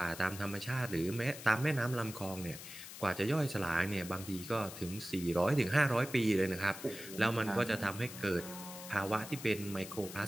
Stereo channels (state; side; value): noise; left; hiss, 12 dB below the sound